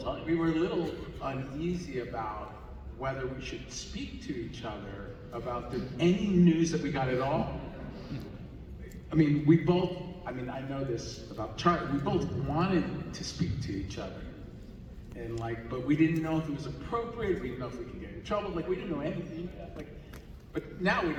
We were a little uneasy about whether we should speak to each other about any news that we got at all. I mean, I know this about Charlie, we both wanted to speak to each other. And but we didn't know if it was appropriate, we didn't know if we could get in trouble, we didn't know anything. But now we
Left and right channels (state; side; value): identical; both; correlation 1.00